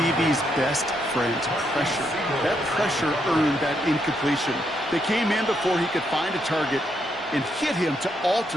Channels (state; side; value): normal; both; correlation 0.78